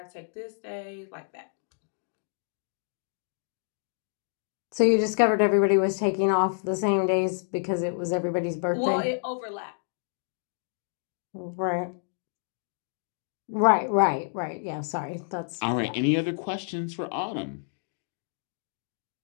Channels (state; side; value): silent; right; digital silence